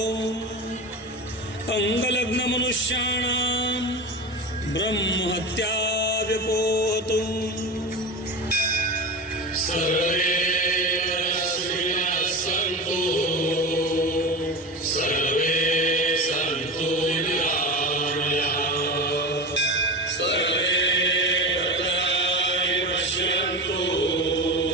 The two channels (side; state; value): both; normal; correlation 0.25